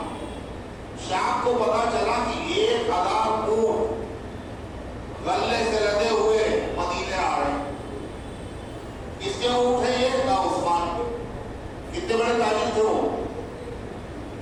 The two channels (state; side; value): identical; both; correlation 1.00